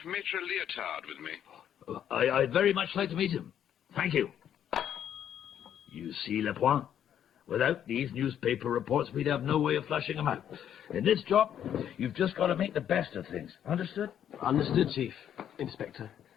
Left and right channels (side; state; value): right; quieter; 9.8 dB